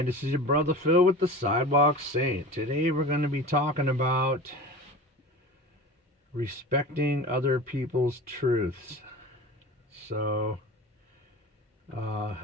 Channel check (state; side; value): normal; both; correlation 0.35